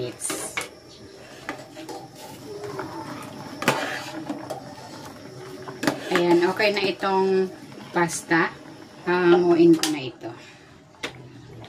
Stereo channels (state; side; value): identical; both; correlation 1.00